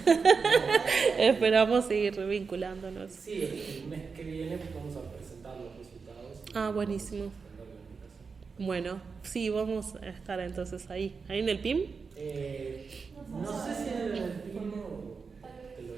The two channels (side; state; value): left; quieter; 5.1 dB